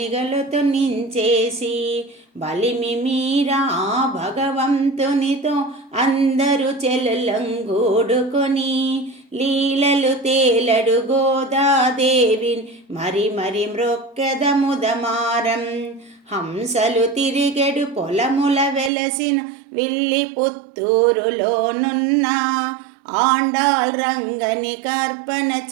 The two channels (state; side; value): drops out; left; at 18.9 s